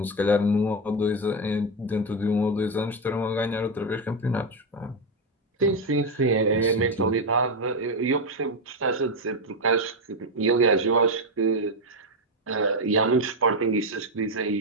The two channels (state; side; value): normal; both; correlation 0.07